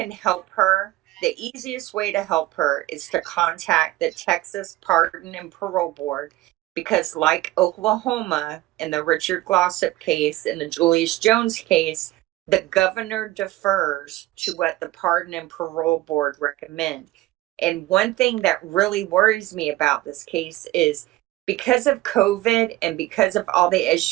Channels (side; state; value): left; quieter; 17.3 dB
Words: help her, the easiest way to help her is to contact the Texas Pardon and Parole Board, because like Oklahoma in the Richard Glossop case and the Julius Jones case, the governor defers to what the Pardon and Parole Board recommend. And one thing that really worries me about this case is because of COVID and because of all the